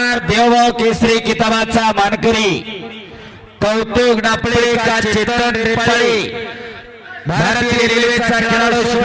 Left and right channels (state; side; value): identical; both; correlation 1.00